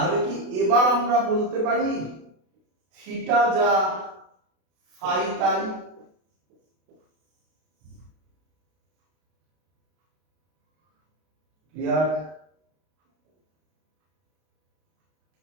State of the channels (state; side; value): late; left; 32 ms